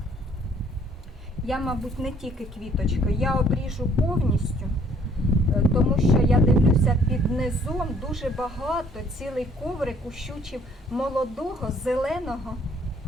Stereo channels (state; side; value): normal; both; correlation 0.61